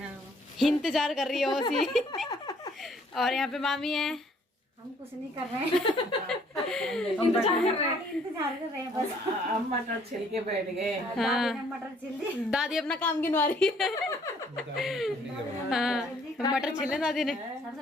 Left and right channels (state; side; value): normal; both; correlation 0.62